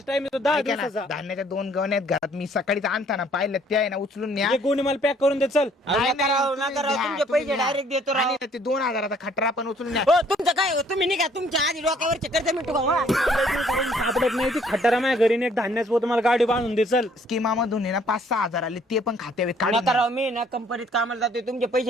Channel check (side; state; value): both; normal; correlation 0.61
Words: टाइम येतो, 10 ऐका ना, दिवसाचा. धान्याच्या 2 गवण्यात घरात मी सकाळीच आणताना पाहिलं ते आहे ना उचलून न्या. हे गोणी मला पॅक करून दे चल. नाही, नका राव, तुम्ही नका राव, द्या, तुमचे तुम्ही पैसे द्या. डायरेक्ट देतो राव. आणि ते 2,000चा खटरा पण उचलून न्या. हो तुमचं काय हो, तुम्ही निघा तुमच्या आधी डोक्यावरचे कर्ज मिटू का? सापडत नाही ती खटारा माझ्या घरी एक धान्याचं पोत मला गाडी बांधून दे चल. स्कीमामधून आहे ना 5-6 हजार आले, ते पण खात्यावर नका काढून राव, मी ना कंपनीत कामाला जातोय, तुमचे